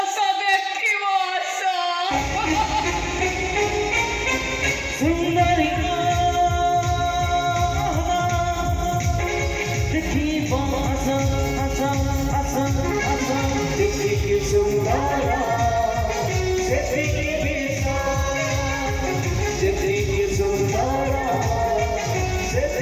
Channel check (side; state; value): both; identical; correlation 1.00